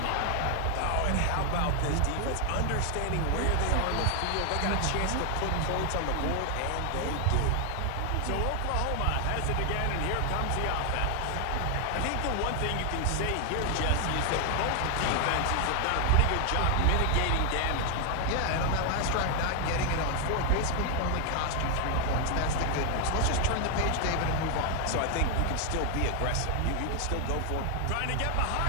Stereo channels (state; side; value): different; both; correlation 0.00